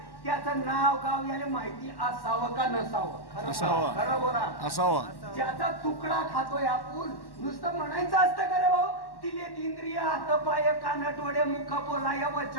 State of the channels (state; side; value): late; right; 1.1 ms